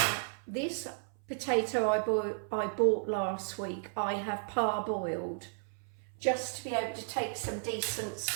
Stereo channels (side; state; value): left; silent; 55 dB below the other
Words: this potato I bought last week, I have parboiled, just to be able to take some decent